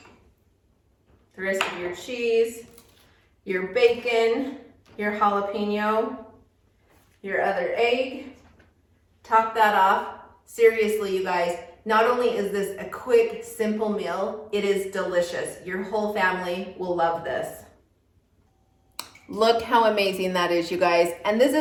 rest of your cheese, your bacon, your jalapeno, your other egg, top that off. Seriously, you guys, not only is this a quick, simple meal, it is delicious. Your whole family will love this. Look how amazing that is, you guys. And this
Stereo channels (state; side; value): identical; both; correlation 1.00